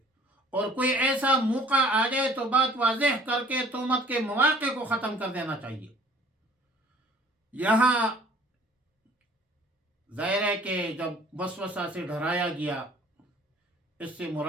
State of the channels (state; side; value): normal; both; correlation 0.53